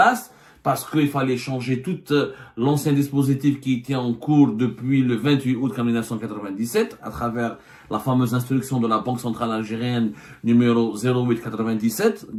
parce qu'il fallait changer tout l'ancien dispositif qui était en cours depuis le 28 août 1997 à travers la fameuse instruction de la Banque centrale algérienne numéro 0897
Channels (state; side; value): identical; both; correlation 1.00